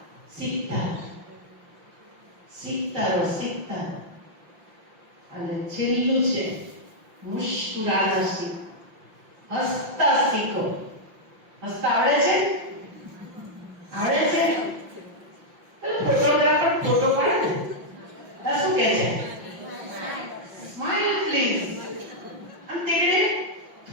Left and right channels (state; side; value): late; left; 5.7 ms